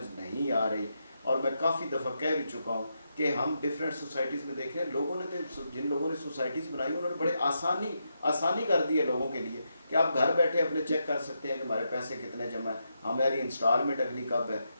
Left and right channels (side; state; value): both; inverted; correlation -0.83